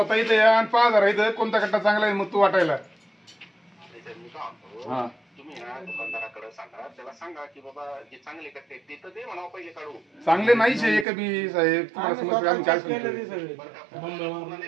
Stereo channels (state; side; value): drops out; left; at 11.1 s